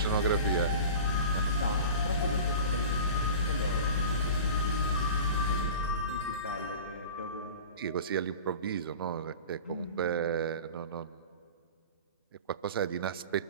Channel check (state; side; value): inverted; both; correlation -0.36